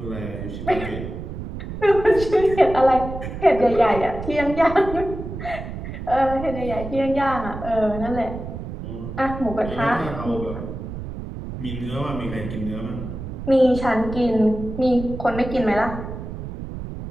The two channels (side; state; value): right; noise; rumble, 8 dB below the sound